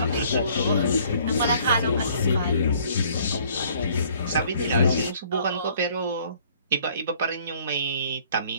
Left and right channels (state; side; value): inverted; both; correlation -0.59